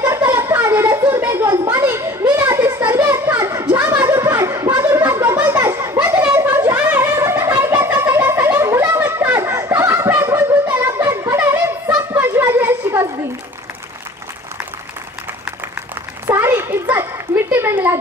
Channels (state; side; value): normal; both; correlation 0.46